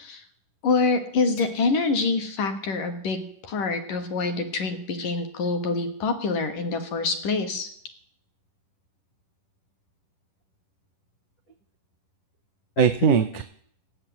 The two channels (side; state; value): right; late; 10 ms